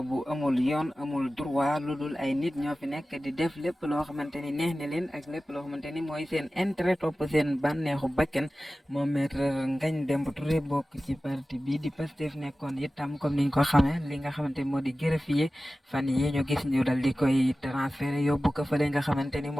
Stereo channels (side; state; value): both; normal; correlation 0.96